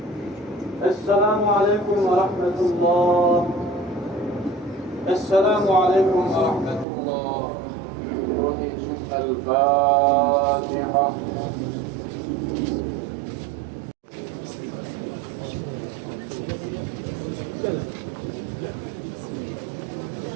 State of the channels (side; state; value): left; drops out; at 6.9 s